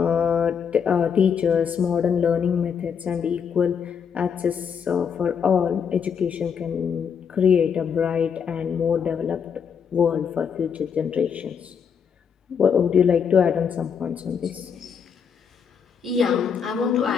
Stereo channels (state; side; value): quieter; right; 7.0 dB